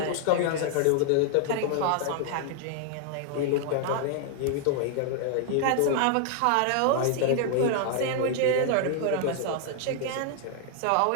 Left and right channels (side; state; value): both; different; correlation 0.00